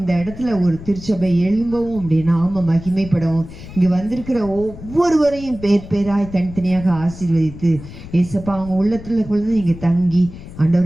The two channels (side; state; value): left; noise; rumble, 15 dB below the sound